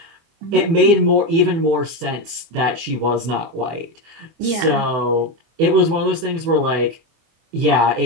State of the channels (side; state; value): left; late; 24 ms